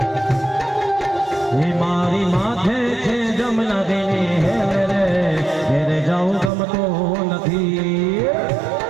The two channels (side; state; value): left; drops out; at 6.5 s